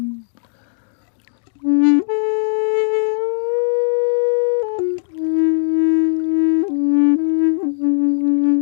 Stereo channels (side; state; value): right; silent; digital silence